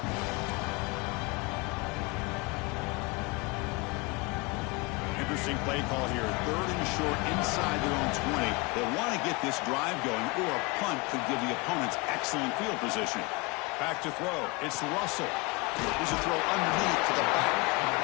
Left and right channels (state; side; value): quieter; right; 26.6 dB